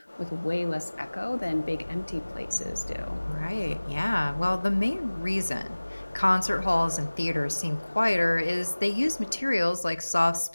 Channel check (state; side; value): inverted; both; correlation -1.00